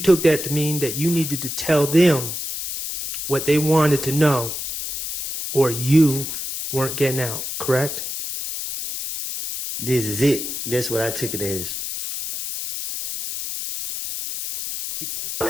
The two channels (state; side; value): noise; left; hiss, 5 dB below the sound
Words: that to mean that you needed to tell them what they wanted to know, or you weren't getting out, correct? This is it. That's what I took it as.